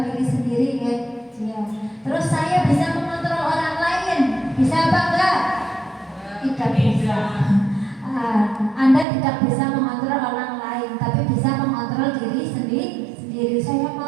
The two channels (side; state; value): left; drops out; at 9.1 s